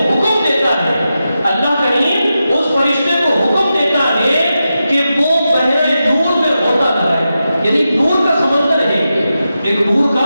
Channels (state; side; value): inverted; both; correlation -0.90